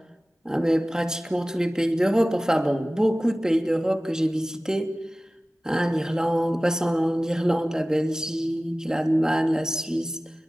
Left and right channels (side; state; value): both; normal; correlation 0.97